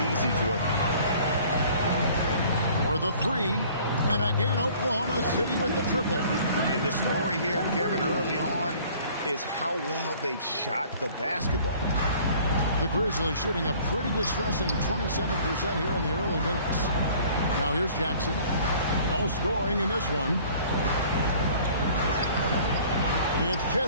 easy for them. For the 3. And again, Oklahoma City with the triple. And the story here, Kevin, early on is how well they've shot the basketball. The Grizzlies shooting a pretty distressing 27% here in the early minutes. Now here's Jackson. No scoring in this one. It's Chet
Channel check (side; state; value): both; inverted; correlation -0.52